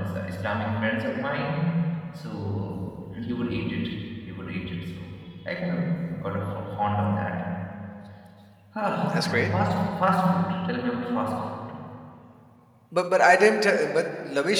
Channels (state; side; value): identical; both; correlation 1.00